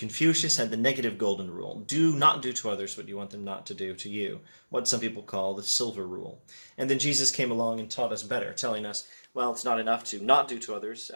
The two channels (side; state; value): both; inverted; correlation -1.00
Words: had the negative golden rule. Do not do to others what you want them not to do to you, what some people call the silver rule. And then Jesus came along and taught us better, telling us, well, it's not enough to not do to others